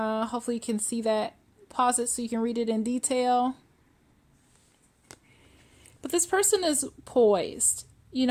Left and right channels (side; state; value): both; identical; correlation 1.00